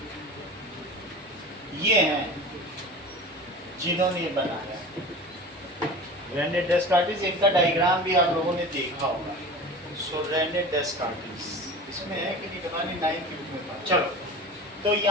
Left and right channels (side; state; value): both; normal; correlation 0.34